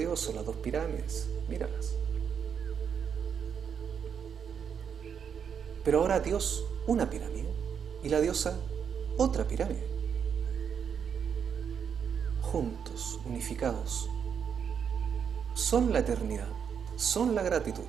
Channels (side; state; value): left; quieter; 7.3 dB